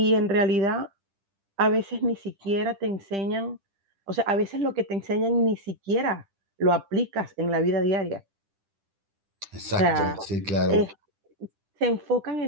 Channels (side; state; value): left; late; 10 ms